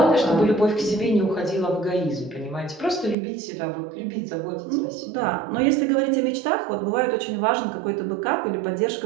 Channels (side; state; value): left; drops out; at 3.2 s